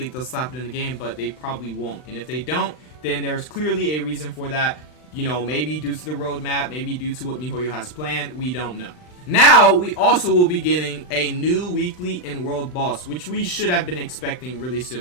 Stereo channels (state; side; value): late; right; 39 ms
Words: they'll slap it in the game, but they probably won't. And if they don't, then there's clearly a reason for that. You know, maybe due to the roadmap, maybe due to what MiHoYo has planned, we don't know. Now, we also will be getting a new weekly in World Boss, which we should have been expecting really